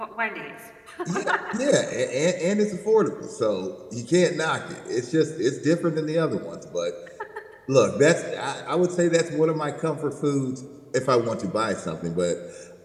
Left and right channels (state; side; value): identical; both; correlation 1.00